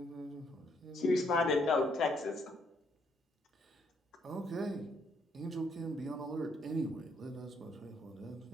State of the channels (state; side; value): normal; both; correlation 0.71